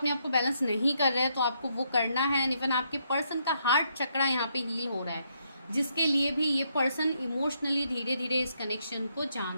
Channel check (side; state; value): both; inverted; correlation -0.75